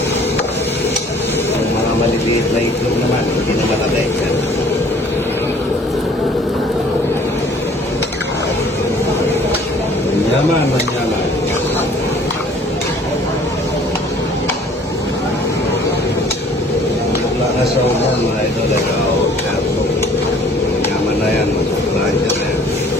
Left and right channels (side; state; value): both; normal; correlation 0.54